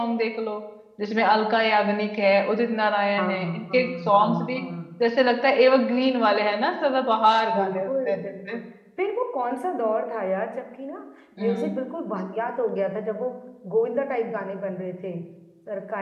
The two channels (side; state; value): both; identical; correlation 1.00